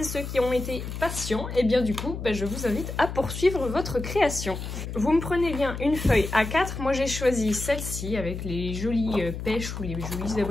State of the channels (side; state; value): left; noise; hum, 7 dB below the sound